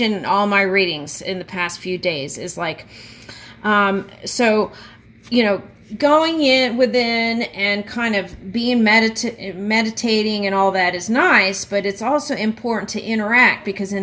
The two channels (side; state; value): both; identical; correlation 1.00